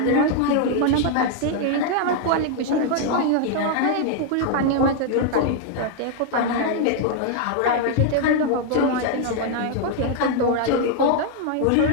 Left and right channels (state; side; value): different; both; correlation 0.00